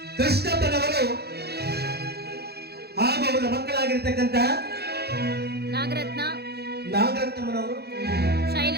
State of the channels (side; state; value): left; late; 0.47 ms